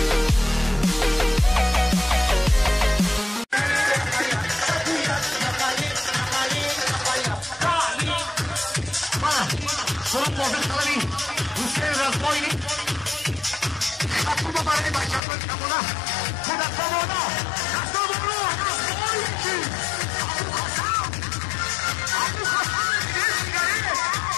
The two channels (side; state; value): right; drops out; at 15.2 s